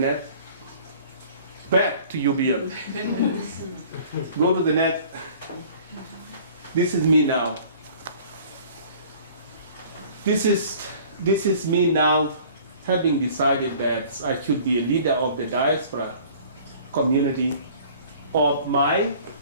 Back to UBM. Go to the next. This is me now. This is me now, having decided that I should be a leader of the diaspora community of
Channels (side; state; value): both; inverted; correlation -0.50